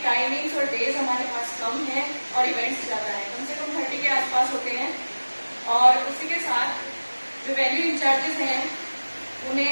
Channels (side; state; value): both; inverted; correlation -1.00